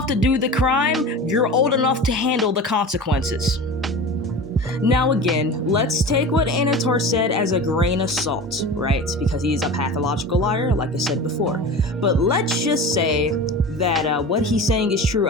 to do the crime, you're old enough to handle the consequences. Now again, let's take what Anator said as a grain of salt, right? Because he's a pathological liar, like I said before. But let's just say that what he's saying is true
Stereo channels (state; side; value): normal; both; correlation 0.32